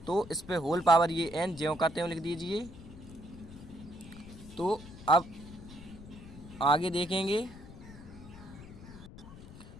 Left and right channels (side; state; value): left; noise; rumble, 16 dB below the sound